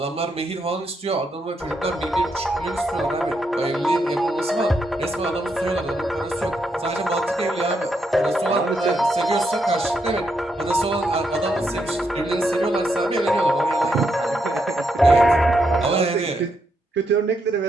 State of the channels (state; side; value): normal; both; correlation 0.79